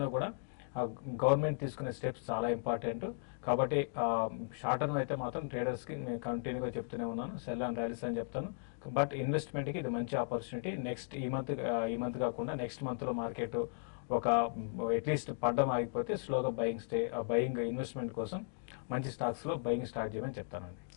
కూడా గవర్నమెంట్ తీసుకునే స్టెప్స్ చాలా ఇంపార్టెంట్. కాబట్టి షార్ట్ టర్మ్ అయితే మాత్రం ట్రేడర్స్ కి నేను కంటిన్యూగా చెప్తూనే ఉన్నాను, సెల్ అండ్ ర్యాలీస్ అని చెప్తాను. బట్ ఇన్వెస్ట్మెంట్ కి ఇది మంచి ఆపర్చునిటీ. నెక్స్ట్ ఈ మంత్ కాకుండా నెక్స్ట్ మంత్ లో మార్కెట్ ఒక అట్లీస్ట్ పడ్డం ఆగిపోతే స్లోగా బయింగ్ ఇన్వెస్ట్మెంట్ కోసం మంచి స్టాక్స్ లో బయింగ్ స్టార్ట్ చేయమని చెప్తానండి.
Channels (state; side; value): silent; right; digital silence